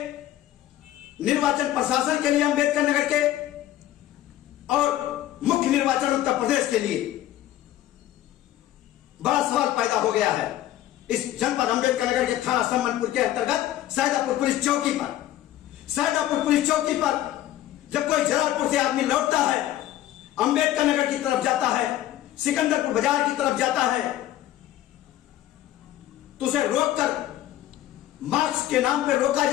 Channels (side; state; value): right; quieter; 13.5 dB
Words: निर्वाचन प्रशासन के लिए अंबेडकर नगर के, और मुख्य निर्वाचन उत्तर प्रदेश के लिए बड़ा सवाल पैदा हो गया है। इस जनपद अंबेडकर नगर के थाना सम्मनपुर के अंतर्गत सैदापुर पुलिस चौकी पर, सैदापुर पुलिस चौकी पर जब कोई जलालपुर से आदमी लौटता है, अंबेडकर नगर की तरफ जाता है, सिकंदरपुर बाजार की तरफ जाता है, तो उसे रोककर मास्क के नाम पर रोका